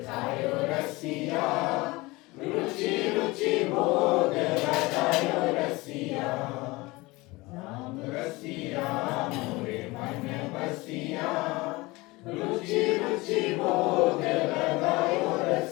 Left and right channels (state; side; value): quieter; right; 22.4 dB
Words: खायो रसिया रुचि रुचि भोग लगायो रसिया राम रसिया मोरे मन बसिया रुचि रुचि भोग लगायो